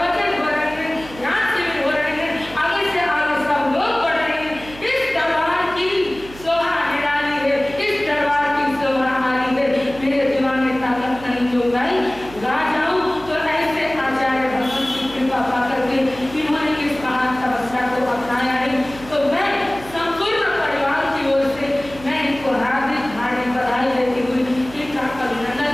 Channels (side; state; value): right; noise; hum, 17 dB below the sound